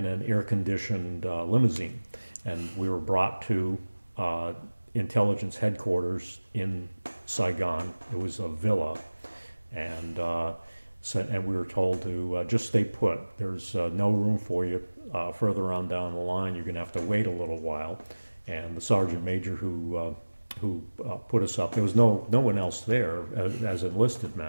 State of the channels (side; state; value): both; inverted; correlation -1.00